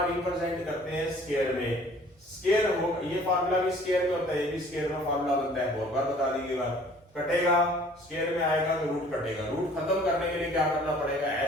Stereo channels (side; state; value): both; normal; correlation 0.53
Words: रिप्रेजेंट करते हैं, स्क्वायर में। स्क्वायर हो, ये फॉर्मूला भी स्क्वायर में होता है, ये भी स्क्वायर में फॉर्मूला बनता है, बहुत बार बता दी बात। कटेगा, स्क्वायर में आएगा तो रूट कटेगा। रूट खत्म करने के लिए क्या करना पड़ेगा,